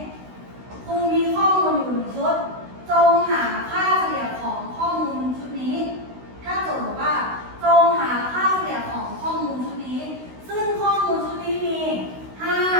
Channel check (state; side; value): late; left; 16 ms